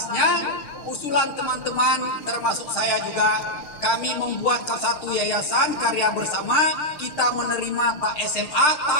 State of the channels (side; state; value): right; late; 6.7 ms